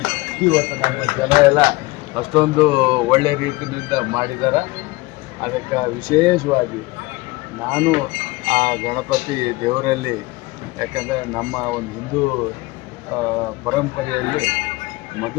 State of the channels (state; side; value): quieter; right; 21.6 dB